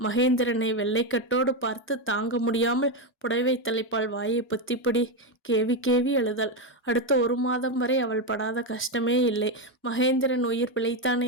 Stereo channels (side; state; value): both; normal; correlation 0.08